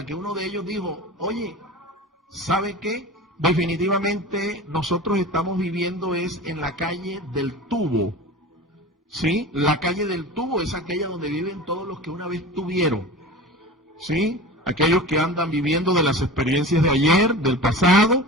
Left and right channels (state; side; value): normal; both; correlation 0.34